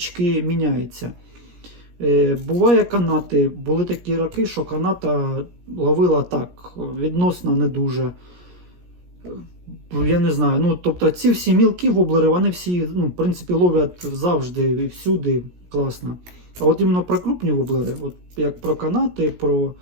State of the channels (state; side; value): late; left; 17 ms